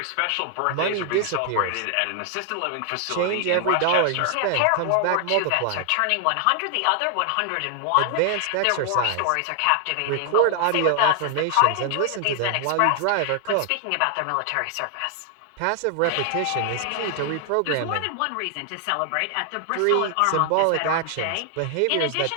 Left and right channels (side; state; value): both; different; correlation 0.00